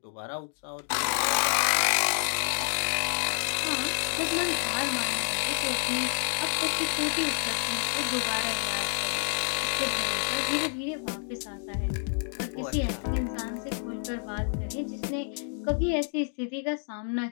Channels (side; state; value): right; silent; 59 dB below the other